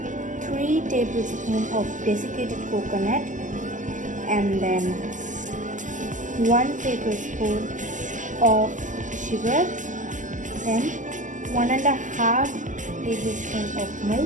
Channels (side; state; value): left; late; 0.37 ms